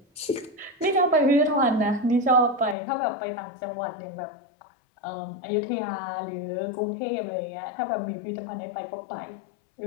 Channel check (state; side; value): drops out; right; at 2.8 s